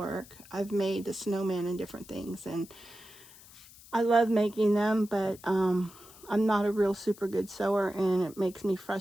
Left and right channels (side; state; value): left; noise; hiss, 21 dB below the sound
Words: I've made the snowman and different things, and I love making them, but I'm not a real super good sewer, and it makes me